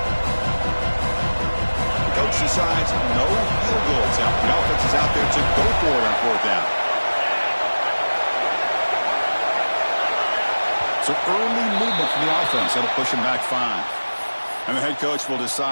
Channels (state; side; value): inverted; both; correlation -1.00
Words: Decides no field goals out. The offense is out there to go for it on fourth down. So early movement from the offense. That'll push him back 5. And the head coach will